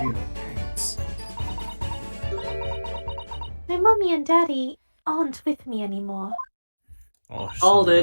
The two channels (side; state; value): both; inverted; correlation -1.00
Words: real parents? My mommy and daddy aren't with me anymore. Oh, Hold